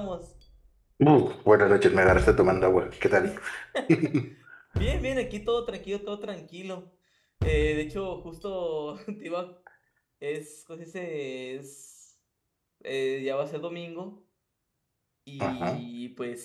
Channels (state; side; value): identical; both; correlation 1.00